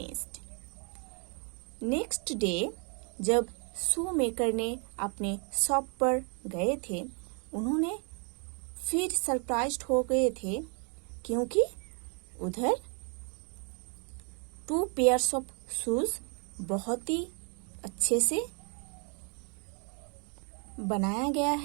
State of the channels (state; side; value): quieter; left; 37.6 dB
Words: Next day जब शू मेकर ने अपने शॉप पर गए थे, उन्होंने फिर सरप्राइज्ड हो गए थे क्योंकि उधर 2 पेयर्स ऑफ शूज बहुत ही अच्छे से बनाया गया